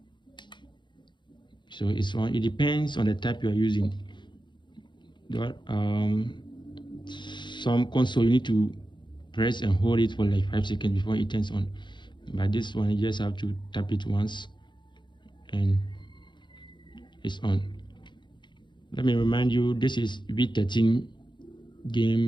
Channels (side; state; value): right; late; 0.22 ms